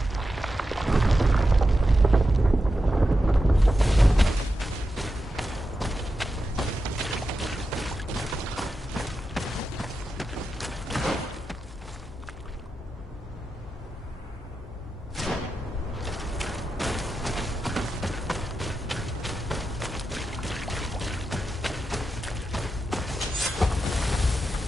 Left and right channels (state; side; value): normal; both; correlation 0.89